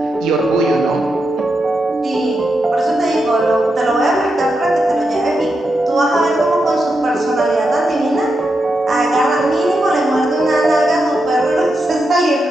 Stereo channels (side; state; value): both; normal; correlation 0.86